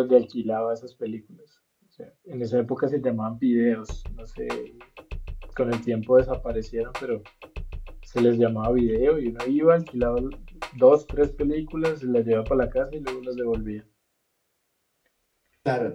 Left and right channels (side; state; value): both; identical; correlation 1.00